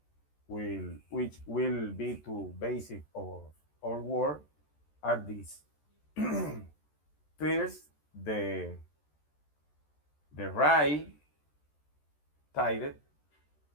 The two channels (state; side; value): late; right; 14 ms